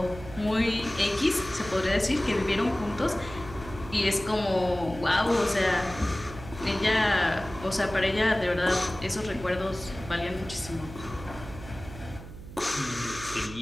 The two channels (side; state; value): right; noise; hum, 14 dB below the sound